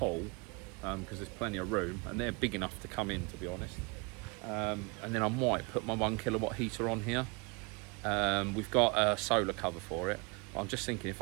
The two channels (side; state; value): left; quieter; 30.3 dB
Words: because there's plenty of room, and they're big enough to come in, to be honest. And then I might put my 1 kilowatt heater on here. We've got a solar cover for it. I'm just thinking if